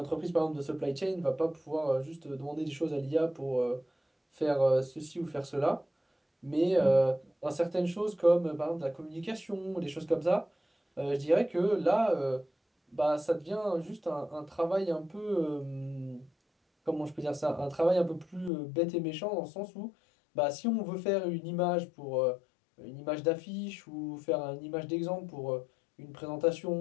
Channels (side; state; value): right; drops out; at 18.5 s